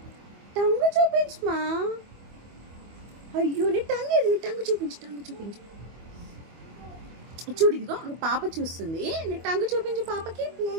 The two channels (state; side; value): late; left; 25 ms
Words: టంగు చూపించు మా. అయ్యో నీ టంగ్ ఏది? నీ టంగు చూపించు. టంగు చూపించు. చూడు ఇదిగో పాప చూస్తుంది. నీ టంగు చూపించు పాపకి.